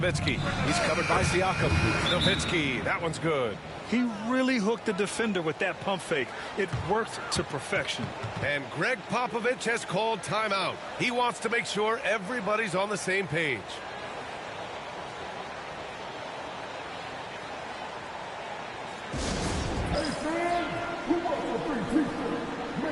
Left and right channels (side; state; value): both; identical; correlation 1.00